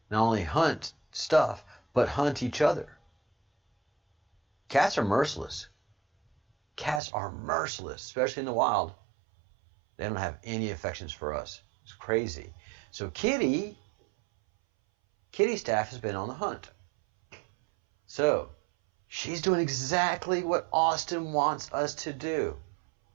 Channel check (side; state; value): left; drops out; at 7.0 s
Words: Not only hunt stuff, but hunt each other. Cats are merciless. Cats are merciless, especially in the wild. They don't have any affections for us. It's crazy. So Kitty staff has been on the hunt. So she's doing exactly what Austin wants us to do.